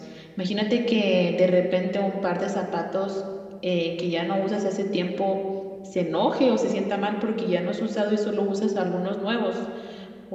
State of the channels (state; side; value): identical; both; correlation 1.00